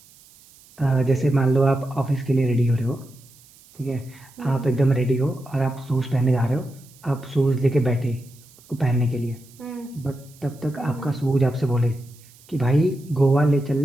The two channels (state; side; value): noise; right; hiss, 26 dB below the sound